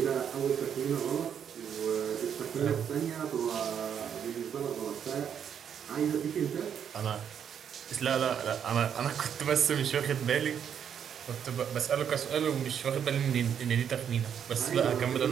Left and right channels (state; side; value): quieter; left; 8.3 dB